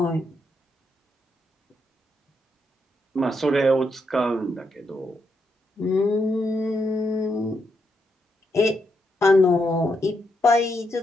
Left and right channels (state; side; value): normal; both; correlation 0.80